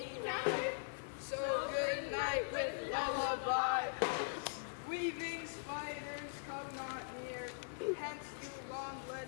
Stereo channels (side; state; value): right; silent; digital silence